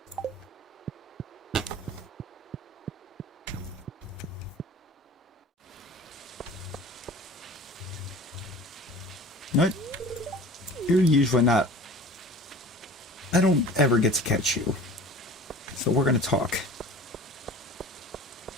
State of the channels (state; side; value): normal; both; correlation 0.42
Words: No, you're usually not. I don't ever get to catch you. So we're going to talk.